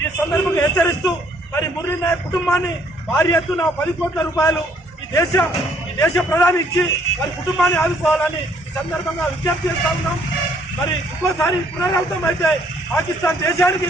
ఈ సందర్భంగా హెచ్చరిస్తూ మరి మురళీ నాయక్ కుటుంబాన్ని భారీ ఎత్తున 10 కోట్ల రూపాయలు ఈ దేశ ప్రధాని ఇచ్చి వారి కుటుంబాన్ని ఆదుకోవాలని ఈ సందర్భంగా విజ్ఞప్తి చేస్తా ఉన్నాం. మరి ఇంకోసారి పునరావృతం అయితే పాకిస్తాన్ దేశానికి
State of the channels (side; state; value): both; normal; correlation 0.64